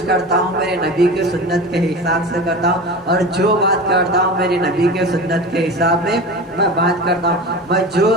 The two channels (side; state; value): both; normal; correlation 0.31